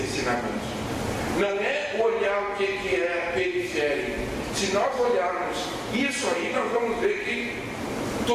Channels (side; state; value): both; identical; correlation 1.00